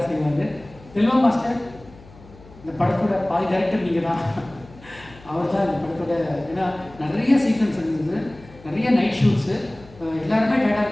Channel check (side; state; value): left; noise; hum, 22 dB below the sound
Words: செய்வார். செல்வா மாஸ்டர் இந்த படத்தோட பாதி டைரக்டர் நீங்கள் தான். அவர் தான் இந்த படத்தோட, ஏன்னா நிறைய சீக்வன்ஸ் இருந்தது, நிறைய நைட் ஷூட்ஸு, எல்லாருமே டயர்டாக